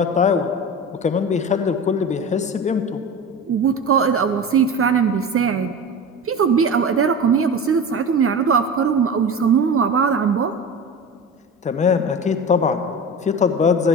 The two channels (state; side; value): normal; both; correlation 0.30